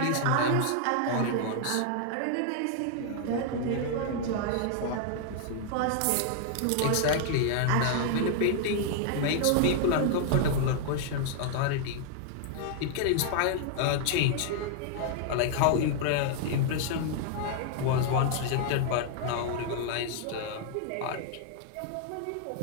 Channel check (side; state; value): both; different; correlation 0.00